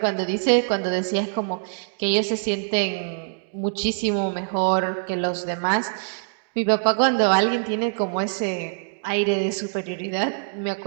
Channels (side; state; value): left; silent; digital silence